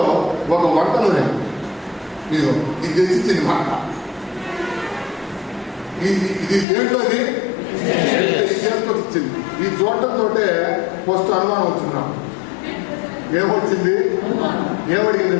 ఒక వంట నూనె ఇది తెచ్చిచ్చింది మాట. ఇది దేంట్లోది చేసుకొచ్చింది. ఈ చూడటంతో ఫస్ట్ అనుమానం వచ్చింది నాకు. ఏమొచ్చింది? ఏమడిగింది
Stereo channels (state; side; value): drops out; right; at 6.7 s